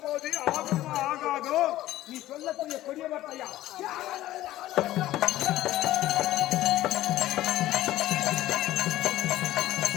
போது ஆகுமா ஆகாதோ நீ சொல்லக்கூடிய கொடிய வார்த்தையா?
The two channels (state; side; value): quieter; right; 15.0 dB